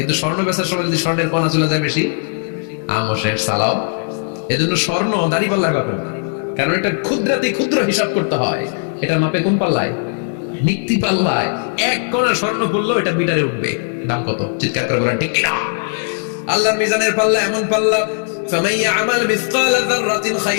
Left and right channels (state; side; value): silent; right; digital silence